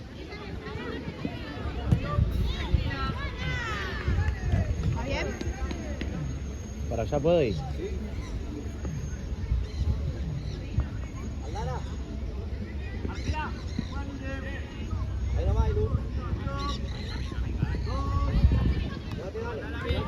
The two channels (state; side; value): identical; both; correlation 1.00